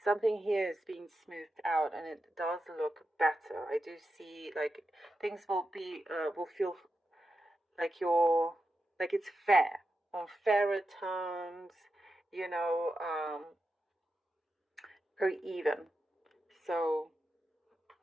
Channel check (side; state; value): both; normal; correlation 0.89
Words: something here is being smoothed out and it does look better. I do see like things will feel like it's fair on fairer terms, you know, very even. So